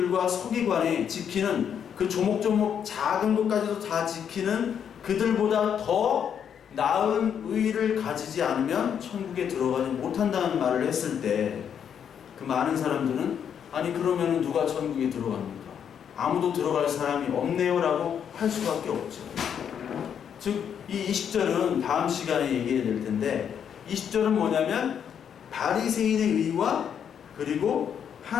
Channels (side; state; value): right; quieter; 8.2 dB